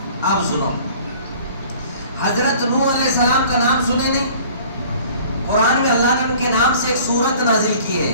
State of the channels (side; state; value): both; inverted; correlation -0.50